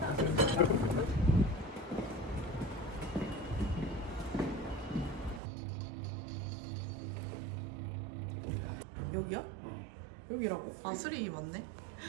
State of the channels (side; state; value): left; drops out; at 5.4 s